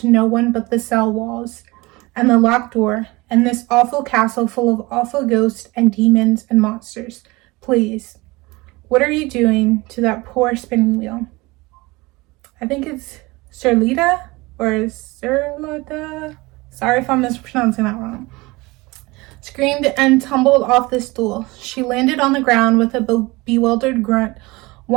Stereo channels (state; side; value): quieter; left; 22.7 dB